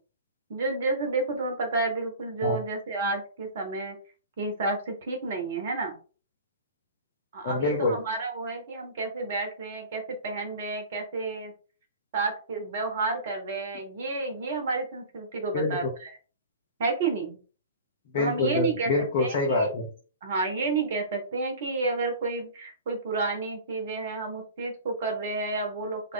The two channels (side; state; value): both; inverted; correlation -0.36